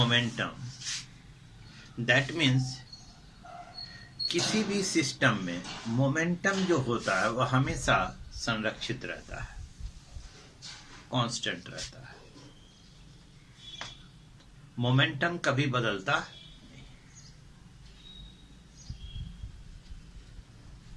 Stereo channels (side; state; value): both; identical; correlation 1.00